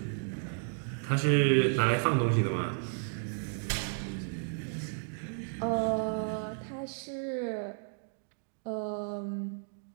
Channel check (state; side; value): silent; left; digital silence